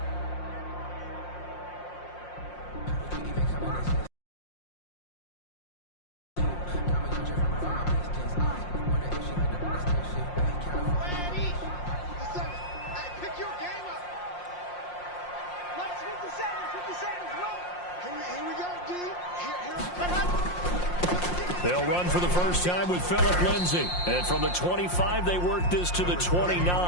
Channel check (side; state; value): right; late; 5.6 ms